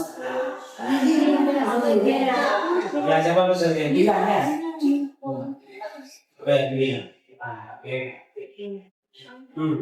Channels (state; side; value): identical; both; correlation 1.00